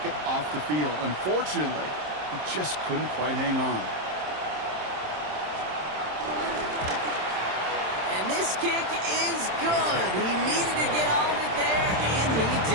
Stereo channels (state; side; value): late; left; 27 ms